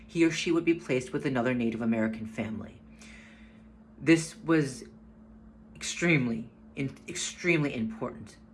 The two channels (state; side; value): identical; both; correlation 1.00